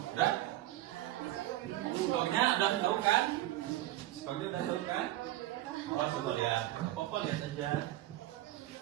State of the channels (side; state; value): left; quieter; 15.2 dB